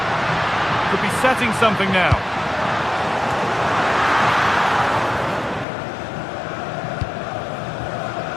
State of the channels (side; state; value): right; drops out; at 5.7 s